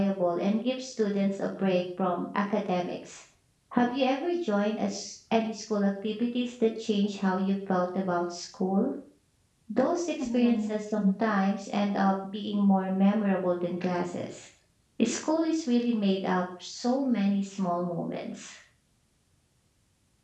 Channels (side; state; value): both; identical; correlation 1.00